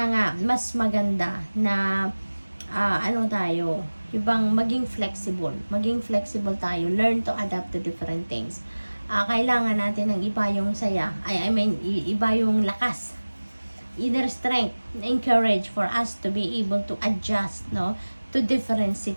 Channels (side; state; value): both; inverted; correlation -1.00